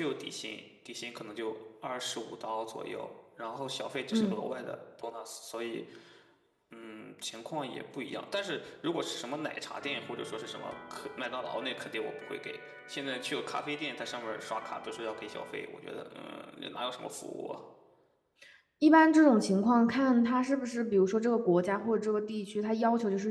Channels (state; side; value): identical; both; correlation 1.00